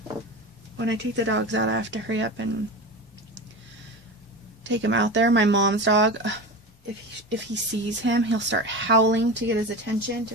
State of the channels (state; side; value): normal; both; correlation 0.27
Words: when I take the dogs out, I have to hurry up and take him out there. My mom's dog, if he sees him, he'll start howling to get his attention